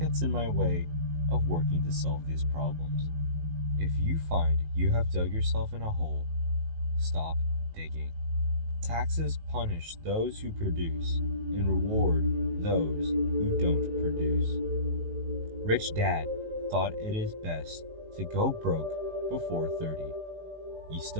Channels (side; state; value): left; late; 19 ms